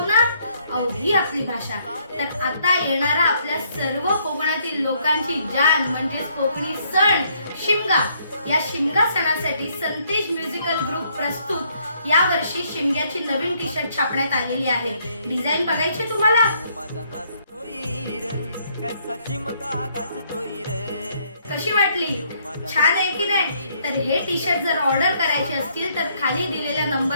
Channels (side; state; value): both; inverted; correlation -0.68